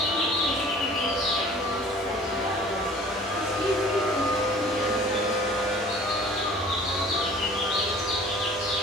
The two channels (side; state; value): both; normal; correlation 0.48